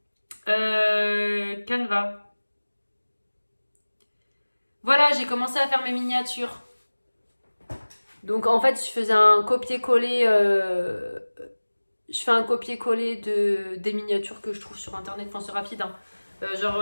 Canva. Voilà, j'ai commencé à faire mes miniatures. Donc en fait, je faisais un copier-coller. Je fais un copier-coller des miniatures que je trouve sur internet. Enfin, c'est rapide. Hein.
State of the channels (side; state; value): both; inverted; correlation -1.00